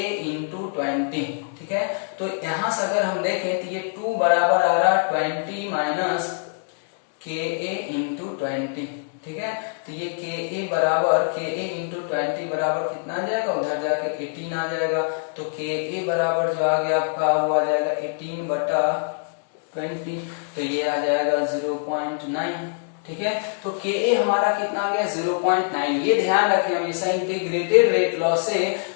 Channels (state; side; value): silent; right; digital silence